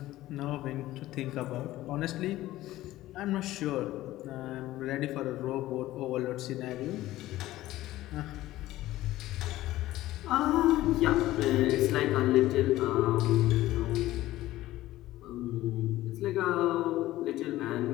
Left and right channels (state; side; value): quieter; right; 15.8 dB